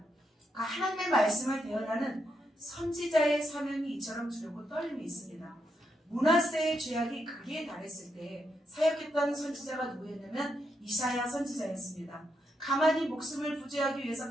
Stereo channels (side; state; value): both; normal; correlation 0.81